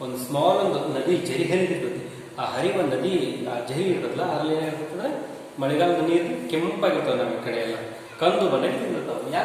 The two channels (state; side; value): identical; both; correlation 1.00